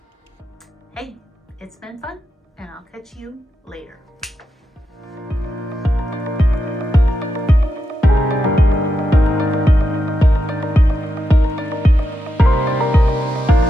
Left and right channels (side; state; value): both; normal; correlation 0.85